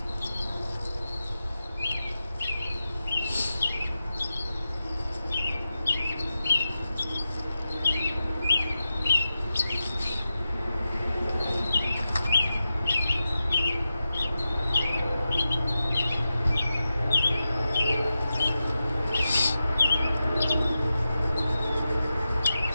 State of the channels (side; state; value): both; inverted; correlation -0.91